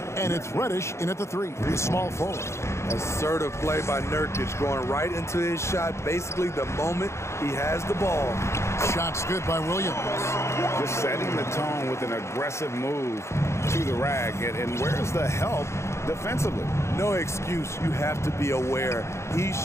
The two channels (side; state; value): right; late; 0.13 ms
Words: And it's Reddish in at the 3, the small forward. Assertive play by Nurkic, going right into his shot basically the moment he has the ball. Shot's good by Williams. Just setting the tone with an aggressive move to the rag. And where's the help defensively? No excuse. You have to be aware. He